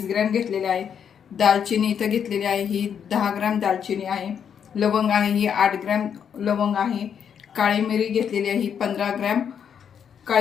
ग्रॅम घेतलेले आहे। दालचिनी इथे घेतलेली आहे, ही 10 ग्रॅम दालचिनी आहे। लवंग आहे, ही 8 ग्रॅम लवंग आहे। काळी मिरी घेतलेली आहे, ही 15 ग्रॅम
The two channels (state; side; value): quieter; right; 7.9 dB